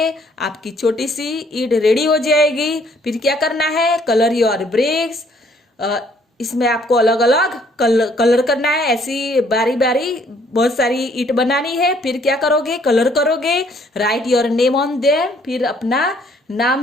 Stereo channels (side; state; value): both; normal; correlation 0.63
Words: आपकी छोटी सी ईंट रेडी हो जाएगी। फिर क्या करना है? Colour your bricks. इसमें आपको अलग अलग कलर करना है। ऐसी बारी बारी बहुत सारी ईंट बनानी है। फिर क्या करोगे? कलर करोगे। Right your name on them. फिर अपना